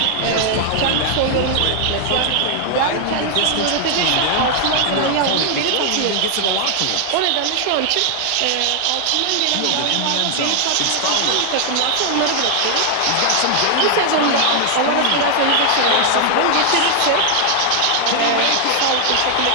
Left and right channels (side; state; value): both; different; correlation 0.00